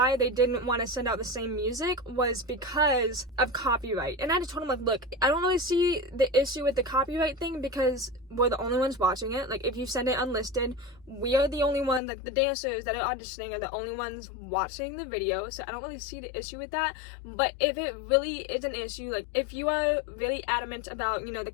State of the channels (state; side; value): drops out; right; at 12.0 s